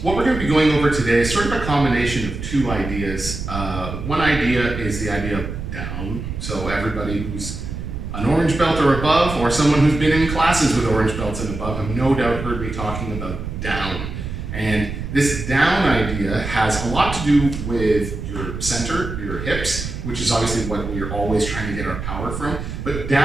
What we're going to be going over today is sort of a combination of two ideas. One idea is the idea of down. So everybody who's an orange belt or above, or someone who's been in classes with orange belts and above have no doubt heard me talking about down. And this down idea has a lot to do with your center, your hips, which is obviously what we're always trying to get our power from. But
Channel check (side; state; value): right; noise; rumble, 7 dB below the sound